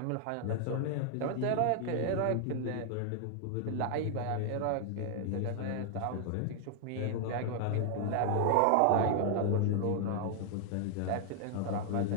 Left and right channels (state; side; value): different; both; correlation 0.00